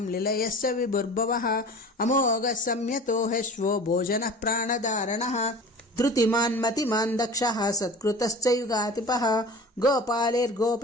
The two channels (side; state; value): both; normal; correlation 0.39